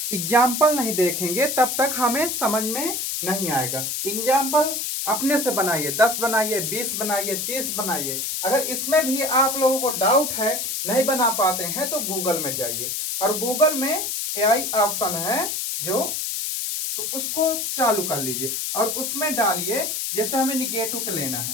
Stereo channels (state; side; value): noise; left; hiss, 2 dB below the sound